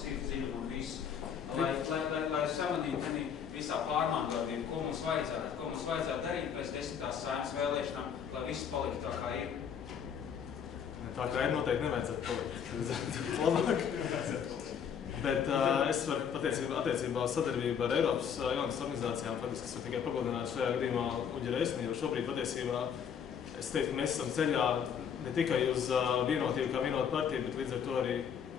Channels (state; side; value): quieter; right; 7.7 dB